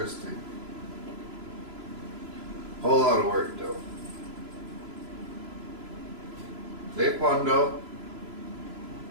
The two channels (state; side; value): late; left; 3.0 ms